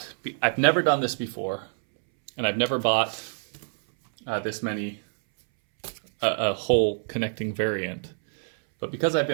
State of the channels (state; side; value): silent; left; 61 dB below the other